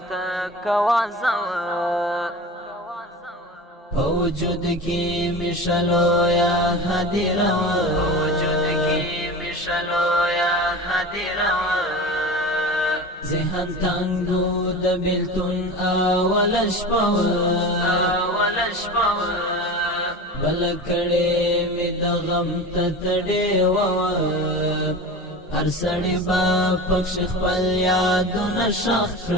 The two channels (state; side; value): normal; both; correlation 0.31